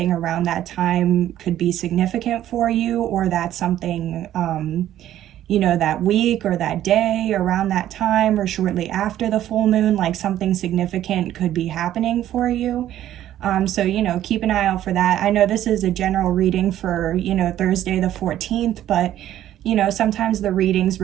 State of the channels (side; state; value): left; quieter; 12.3 dB